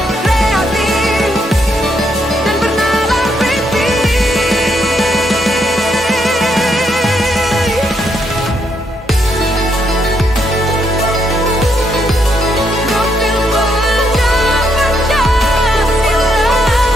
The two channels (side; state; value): both; normal; correlation 0.76